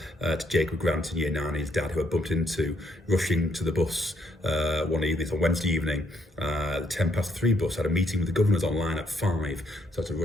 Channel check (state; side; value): normal; both; correlation 0.72